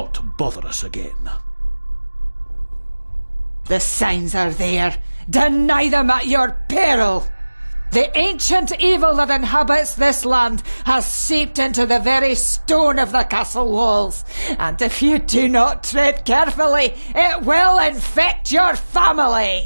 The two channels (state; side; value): inverted; both; correlation -1.00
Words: bother us again. The signs are there. Deny them at your peril. The ancient evil that inhabits this land has seeped into the very stone of the castle walls, and if you do not tread carefully, it will infect your